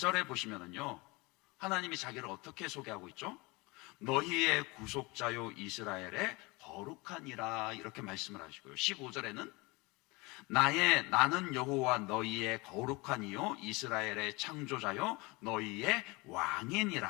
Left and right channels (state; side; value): quieter; right; 25.1 dB